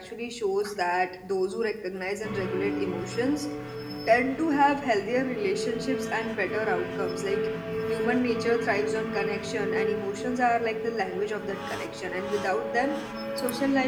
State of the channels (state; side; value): identical; both; correlation 1.00